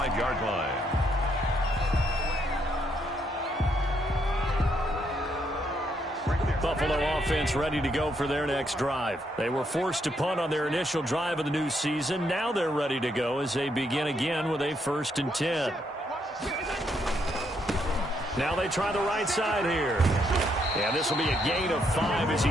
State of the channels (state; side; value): normal; both; correlation 0.75